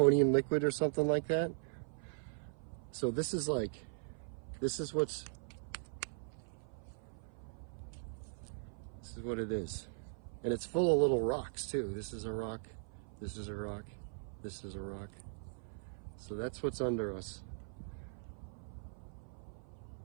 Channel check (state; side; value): silent; left; 51 dB below the other